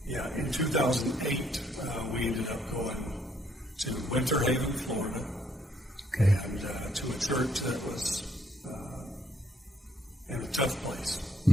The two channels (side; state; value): both; normal; correlation 0.69